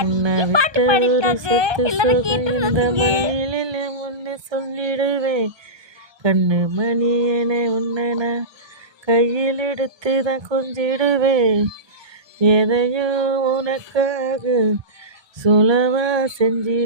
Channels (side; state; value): left; late; 1.2 ms